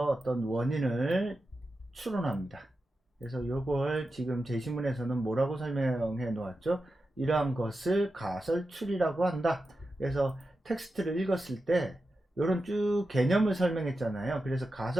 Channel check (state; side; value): normal; both; correlation 0.91